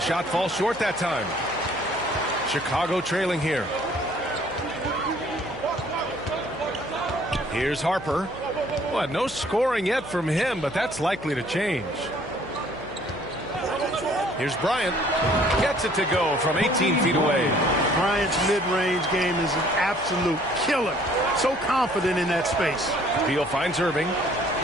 falls short that time. Chicago trailing here. Here's Harper. Well, no scoring yet from him, but that's likely to change. Here's Bryant. Gets it to go from 18 feet away. Bryant's mid-range game is an absolute killer. So confident in that space. Beal finds Irving.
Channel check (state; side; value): noise; left; hum, 22 dB below the sound